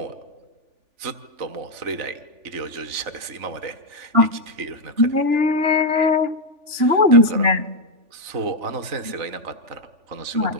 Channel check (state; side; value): late; left; 3.4 ms